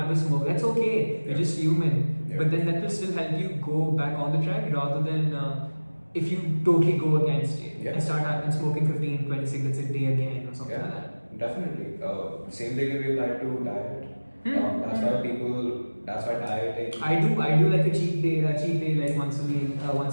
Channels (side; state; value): both; inverted; correlation -1.00